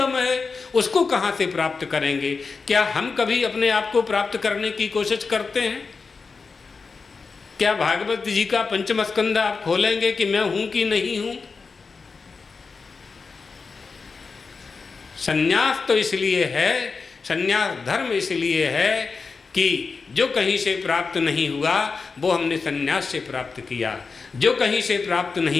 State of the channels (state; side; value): quieter; right; 4.7 dB